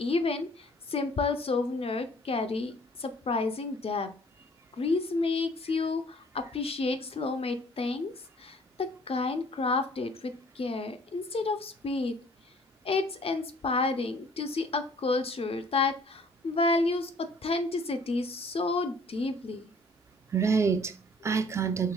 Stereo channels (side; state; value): both; normal; correlation 0.56